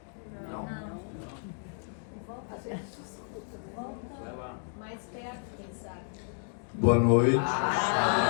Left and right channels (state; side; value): silent; right; 57 dB below the other